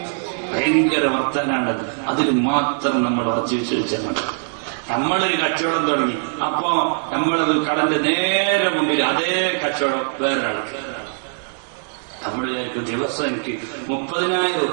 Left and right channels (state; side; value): silent; left; digital silence